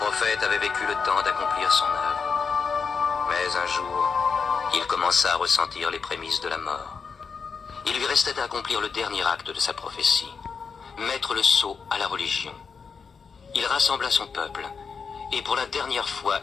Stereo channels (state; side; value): quieter; right; 5.6 dB